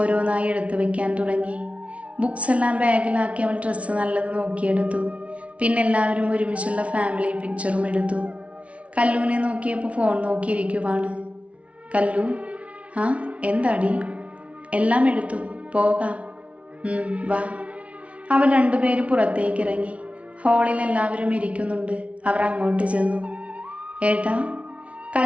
എടുത്തു വെക്കാൻ തുടങ്ങി. ബുക്സ് എല്ലാം ബാഗിലാക്കി അവൾ ഡ്രസ്സ് നല്ലത് നോക്കിയെടുത്തു. പിന്നെ എല്ലാവരും ഒരുമിച്ചുള്ള ഫാമിലി പിക്ചറും എടുത്തു. കല്ലുവിനെ നോക്കിയപ്പോൾ ഫോൺ നോക്കിയിരിക്കുവാണ്. കല്ലു, എന്താടി? എല്ലാം എടുത്തു, പോകാം. വാ. അവർ രണ്ടുപേരും പുറത്തേക്ക് ഇറങ്ങി. ഹാളിൽ എല്ലാവരും ഇരിക്കുന്നുണ്ട്. അവർ അങ്ങോട്ട് ചെന്നു. ഏട്ടാ,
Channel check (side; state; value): left; late; 0.063 ms